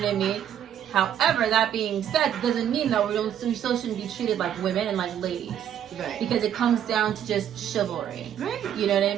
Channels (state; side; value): quieter; left; 9.9 dB